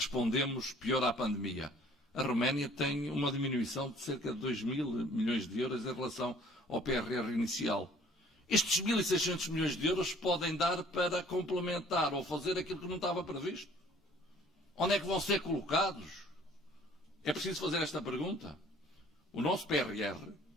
pior à pandemia. A Roménia tem uma diminuição de cerca de 2.000 milhões de euros em relação ao PRR inicial. Estes 1.600 milhões de euros podem dar para complementar ou fazer aquilo que não estava previsto. Onde é que vão ser colocados? É preciso fazer esta pergunta. O nosso PRR,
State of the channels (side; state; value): both; normal; correlation 0.55